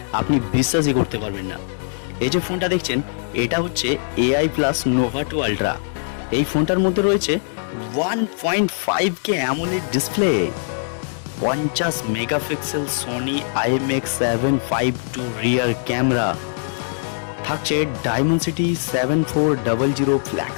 আপনি বিশ্বাসই করতে পারবেন না। এই যে ফোনটা দেখছেন, এটা হচ্ছে এআই প্লাস নোভা 2 আলট্রা। এই ফোনটার মধ্যে রয়েছে 1.5K AMOLED display, 50 megapixel Sony IMX752 rear camera, থাকছে ডায়মেনসিটি 7400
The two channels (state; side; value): silent; right; 65 dB below the other